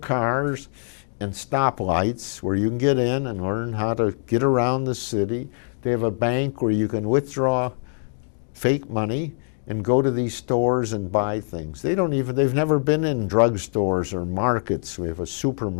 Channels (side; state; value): right; silent; digital silence